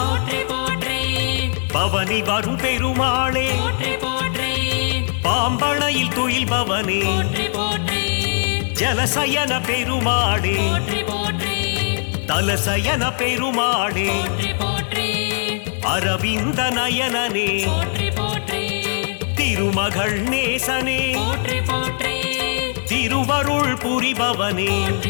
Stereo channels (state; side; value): silent; right; digital silence